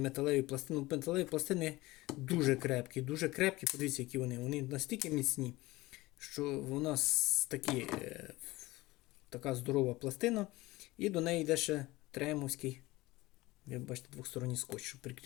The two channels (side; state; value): right; quieter; 19.8 dB